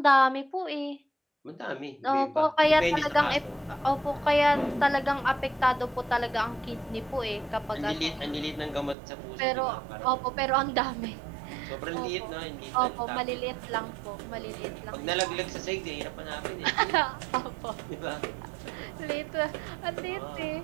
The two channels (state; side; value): drops out; left; at 9.0 s